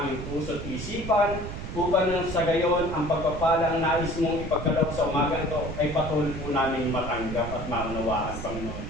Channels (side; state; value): right; noise; rumble, 7 dB below the sound